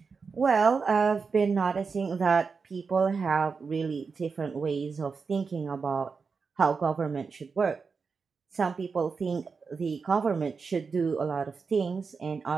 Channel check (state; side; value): quieter; left; 5.1 dB